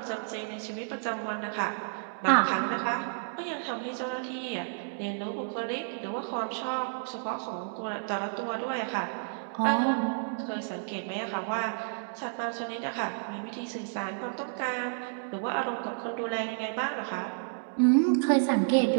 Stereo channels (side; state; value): left; silent; digital silence